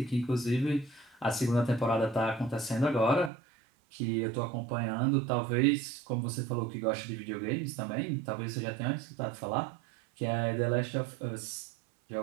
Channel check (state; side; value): drops out; left; at 3.3 s